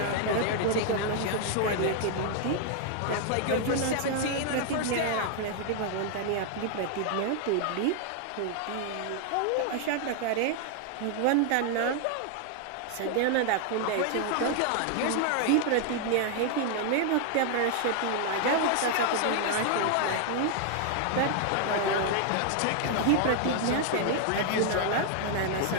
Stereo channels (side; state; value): both; different; correlation 0.00